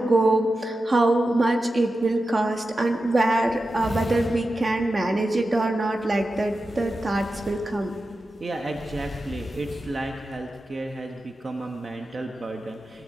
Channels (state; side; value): normal; both; correlation 0.92